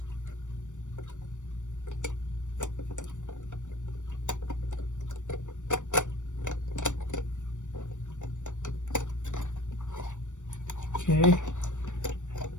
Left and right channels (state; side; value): late; right; 0.85 ms